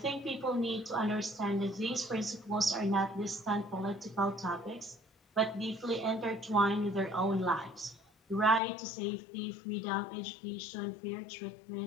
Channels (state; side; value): drops out; right; at 8.6 s